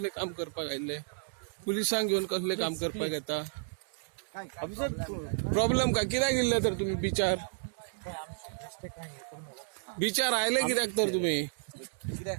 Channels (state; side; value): silent; left; 56 dB below the other